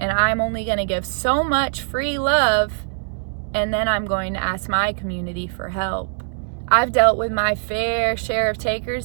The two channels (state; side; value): silent; left; digital silence